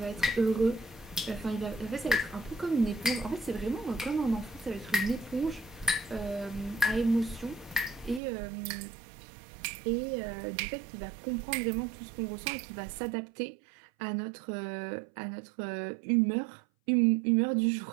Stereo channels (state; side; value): drops out; left; at 8.2 s